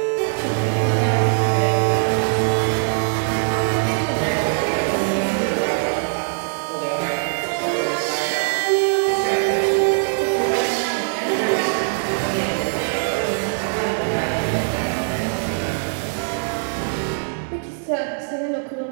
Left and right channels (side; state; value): left; silent; 59 dB below the other